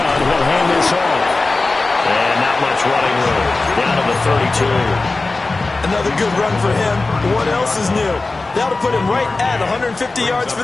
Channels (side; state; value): right; quieter; 3.5 dB